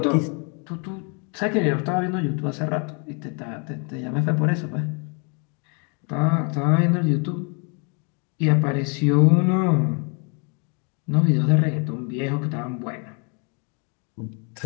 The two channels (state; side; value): quieter; right; 36.4 dB